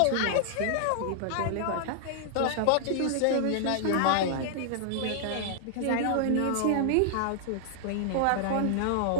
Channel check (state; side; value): different; both; correlation 0.00